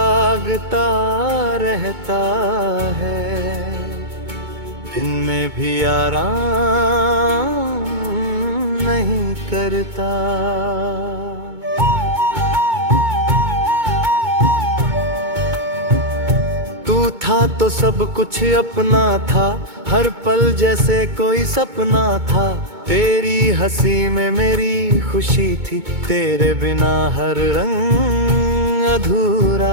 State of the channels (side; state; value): left; late; 2.2 ms